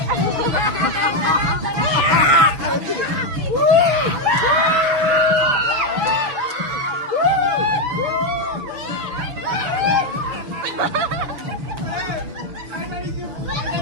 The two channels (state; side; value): late; left; 7.1 ms